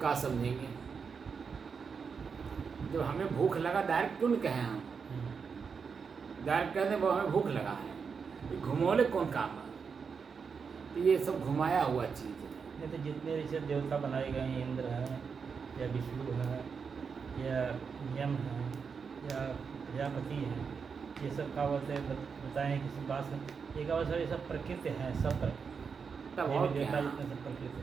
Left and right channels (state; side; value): quieter; left; 5.8 dB